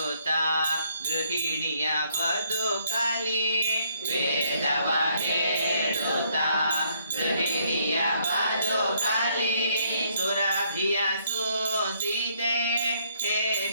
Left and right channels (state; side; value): inverted; both; correlation -0.69